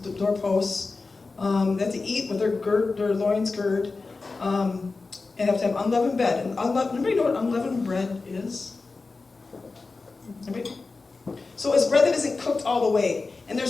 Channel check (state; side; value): quieter; right; 3.9 dB